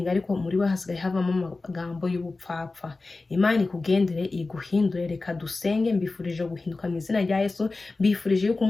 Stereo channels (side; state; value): right; quieter; 3.5 dB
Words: ariko muri we hasigaye havamo amagambo y'ubupfapfa. Imana ikugendere iguhindure. Reka dusenge. Mbifurije guhinduka mu izina rya Yesu. Mbifurije yuko